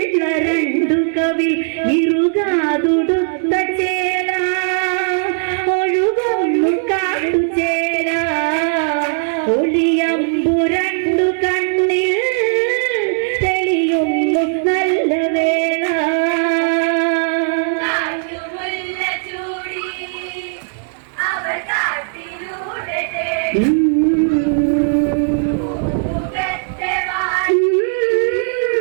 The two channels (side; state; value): left; silent; digital silence